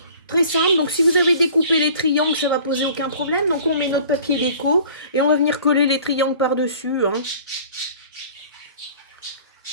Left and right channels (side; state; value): both; inverted; correlation -0.48